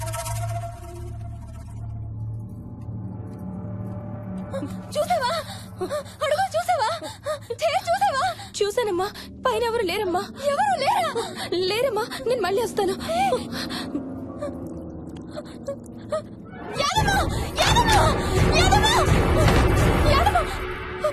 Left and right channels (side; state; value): both; identical; correlation 1.00